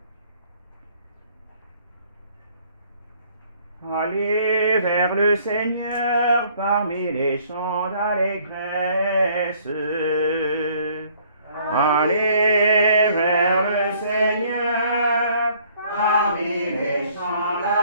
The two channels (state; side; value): inverted; both; correlation -0.61